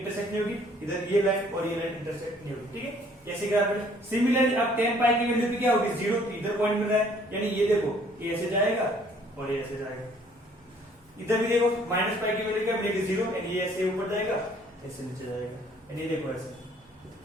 नहीं होगी, इधर ये लाइन और ये लाइन इंटरसेक्ट नहीं होगी। ठीक है, ऐसे ग्राफ में सिमिलरली अब tan पाई की वैल्यू भी क्या होगी 0, इधर पॉइंट मिल रहा है, यानी ये देखो ये ऐसे जाएगा और ये ऐसे जाएगा। इधर भी देखो माइनस पाई की वैल्यू क्या मिलेगी 0, यानी ये ऐसे ऊपर जाएगा ऐसे नीचे जाएगा, यानी ये देखो ऐसे।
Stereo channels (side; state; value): both; normal; correlation 0.59